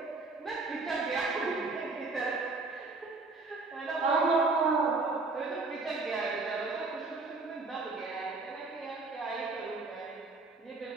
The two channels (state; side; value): quieter; left; 3.7 dB